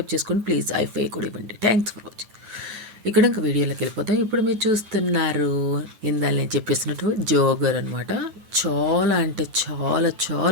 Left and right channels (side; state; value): left; late; 9.3 ms